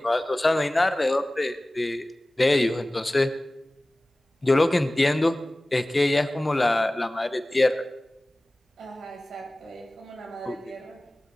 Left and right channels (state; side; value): normal; both; correlation 0.98